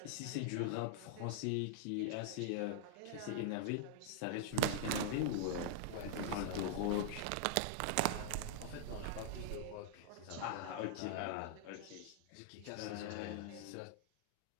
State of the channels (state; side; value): different; both; correlation -0.01